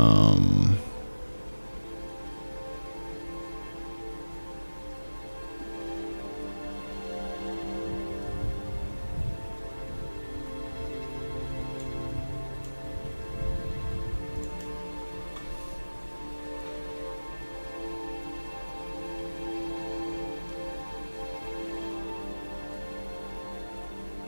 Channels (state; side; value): inverted; both; correlation -1.00